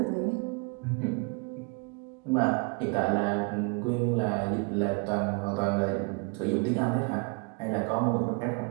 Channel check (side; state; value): left; quieter; 32.4 dB